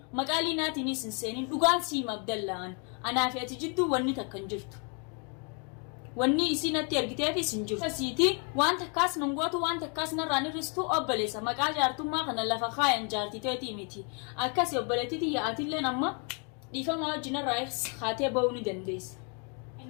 مقالينا تنين سنسينين دوغان سيما بدلان أنا في أتجدو وني تكنجرت وني إسينا تيرجتها في سنجر سيتي وانت كاس نمغوتو وانت كاس نراني رستو أبليسا مقال جارتو ما خنا لفخاين جارتي تيتي ميتي أكاس يبلتي تي يأتي لنا ما ديفا ما جنا رايس خاتي باوني دنديس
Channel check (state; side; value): quieter; right; 37.4 dB